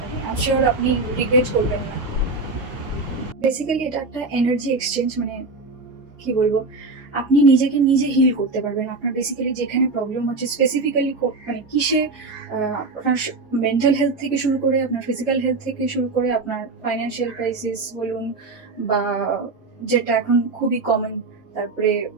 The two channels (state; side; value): quieter; left; 3.6 dB